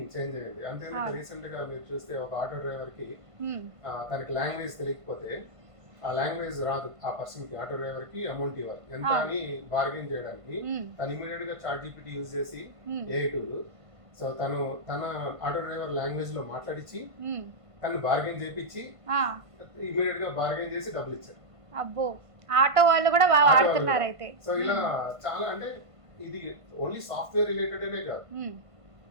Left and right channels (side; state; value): left; late; 1.5 ms